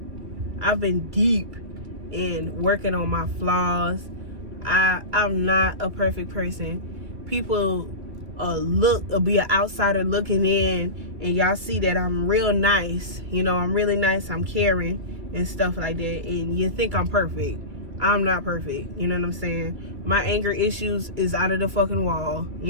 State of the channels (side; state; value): left; late; 2.6 ms